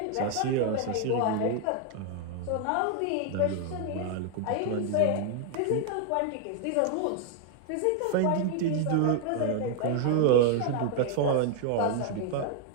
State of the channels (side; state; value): both; different; correlation 0.00